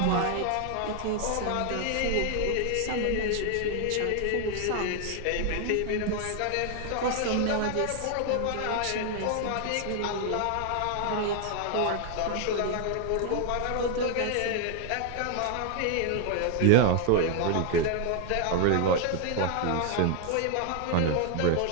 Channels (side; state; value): both; different; correlation 0.00